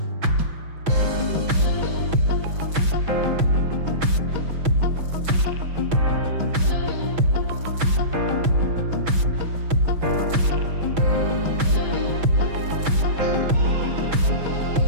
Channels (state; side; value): late; left; 6.1 ms